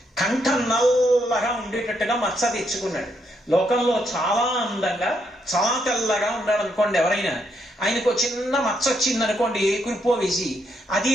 కంఠం నల్లగా ఉండేటట్టుగా మత్స తెచ్చుకున్నాడు. లోకంలో చాలా అందంగా చాలా తెల్లగా ఉన్నాడు అనుకోండి ఎవరైనా, ఆయనకు చిన్న మచ్చ వచ్చిందనుకోండి ఏ కురిపో వేసి, అది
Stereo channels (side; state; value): both; normal; correlation 0.76